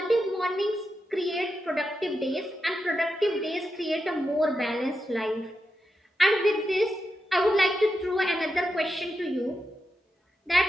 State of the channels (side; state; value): both; normal; correlation 0.87